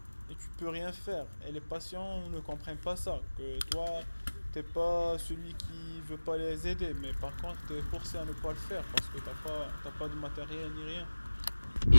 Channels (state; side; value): inverted; both; correlation -1.00